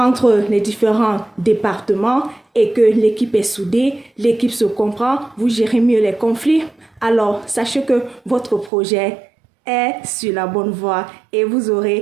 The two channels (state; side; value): drops out; left; at 8.7 s